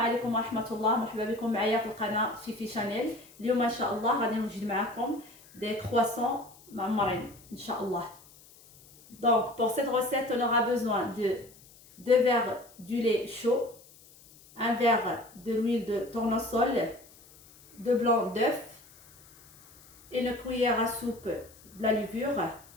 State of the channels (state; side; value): noise; left; hiss, 24 dB below the sound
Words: ورحمة الله، مرحبا بكم معايا في القناة Fifi Chanel. اليوم إن شاء الله غادي نوجد معكم des croissants معمرين إن شاء الله. Donc pour cette recette on aura besoin de 2 verres du lait chaud, 1 verre de l'huile de tournesol, 2 blancs d'œufs, une cuillère à soupe de la levure,